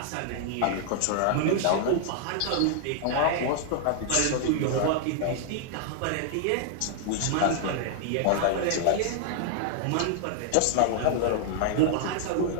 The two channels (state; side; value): different; both; correlation -0.01